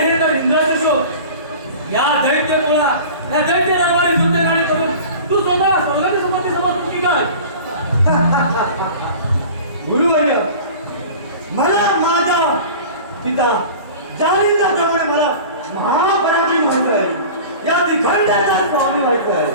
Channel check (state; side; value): inverted; both; correlation -0.39